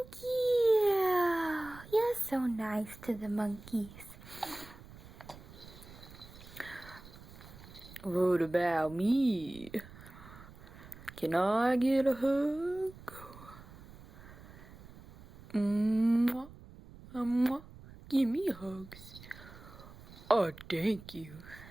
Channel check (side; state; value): right; noise; rumble, 18 dB below the sound